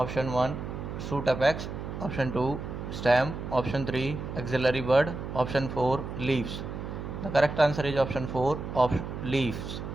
1 shoot apex, option 2 stem, option 3 axillary bud, option 4 leaves. The correct answer is option 4 of leaves.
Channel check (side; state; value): right; noise; hum, 7 dB below the sound